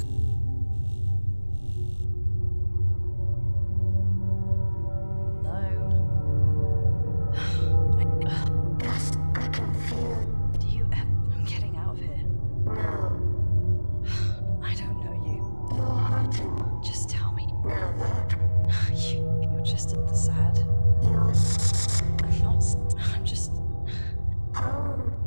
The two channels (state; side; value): inverted; both; correlation -1.00